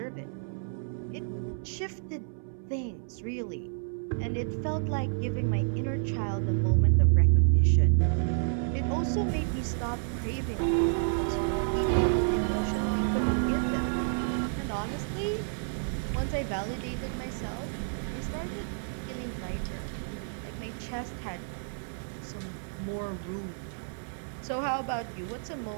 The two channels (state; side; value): silent; left; 58 dB below the other